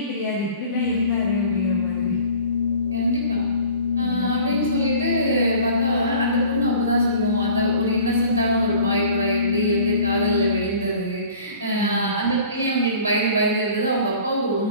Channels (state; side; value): inverted; both; correlation -0.47